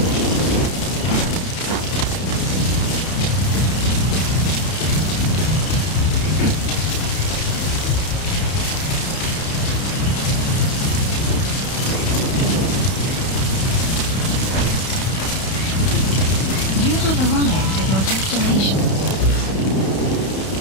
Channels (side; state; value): right; late; 31 ms